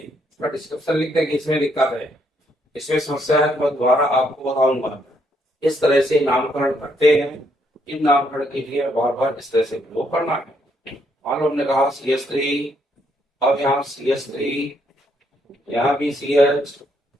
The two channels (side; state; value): both; normal; correlation 0.73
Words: उसका डिस्क्रिप्शन लिख दें कि इसमें दिक्कत है, इसमें समस्या है, तो मैं दोबारा आपको बताऊंगा। इस तरह से नामकरण करते हैं। इन नामकरण के लिए बार बार इस तरह से प्रयोग करना है। मान लो हमने कहा CH3, अब यहाँ CH3, यहाँ भी CH,